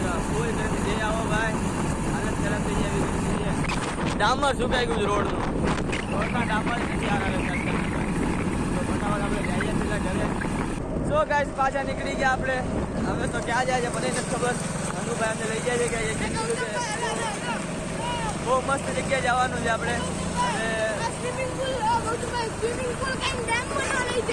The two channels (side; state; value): both; identical; correlation 1.00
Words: ફૂલ ગરમી. જઈ આવો ભાઈ, હાલત ખરાબ થઈ જાય એવી ગરમી છે. ડામર સુકાઈ ગયું રોડનું. રોડના ડામર નથી આગળ. તો ફટાફટ આપણે જઈએ પેલા ઘરે. સો ગાઈસ પાછા નીકળી ગયા આપણે. હવે તો ક્યાં જાય છે મને નથી ખબર. હનુભાઈ અમને લઈ જાય છે કે બહુ મસ્ત જગ્યાએ જવાનું છે આપણે.